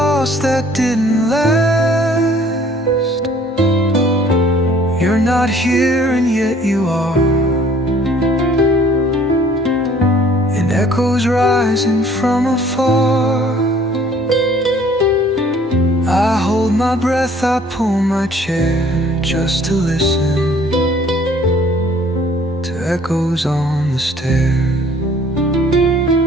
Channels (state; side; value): normal; both; correlation 0.56